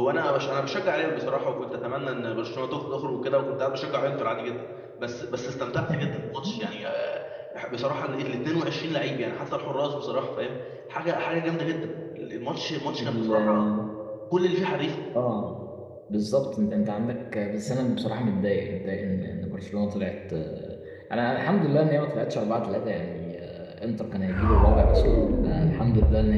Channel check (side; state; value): both; identical; correlation 1.00